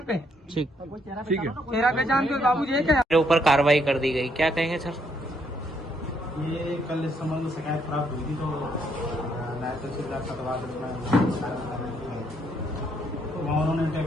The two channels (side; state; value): both; normal; correlation 0.72